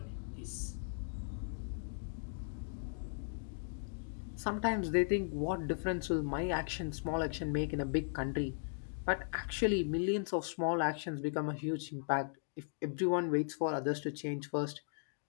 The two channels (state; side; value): silent; right; digital silence